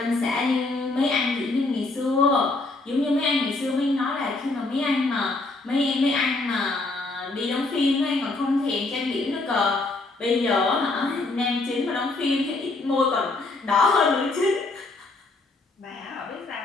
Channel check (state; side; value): quieter; right; 3.3 dB